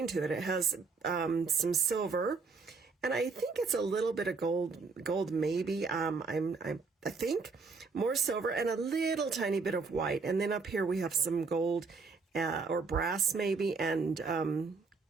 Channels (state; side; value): quieter; left; 4.5 dB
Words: to it. It has some silver, and I think it's a little bit of gold maybe. I think more silver and a little tiny bit of white. And then up here we have some gold or brass maybe, and